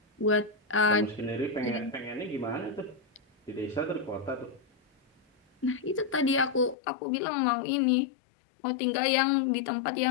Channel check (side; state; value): right; drops out; at 6.8 s